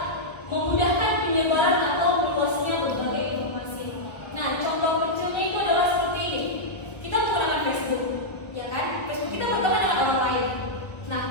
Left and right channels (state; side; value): late; right; 1.2 ms